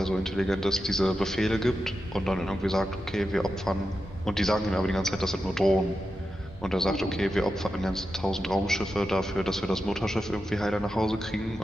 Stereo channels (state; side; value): normal; both; correlation 0.90